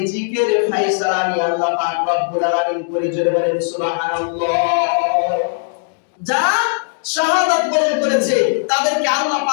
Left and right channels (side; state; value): right; silent; digital silence